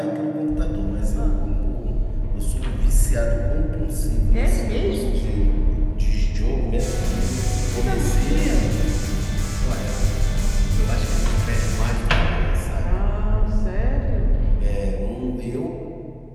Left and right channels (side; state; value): both; identical; correlation 1.00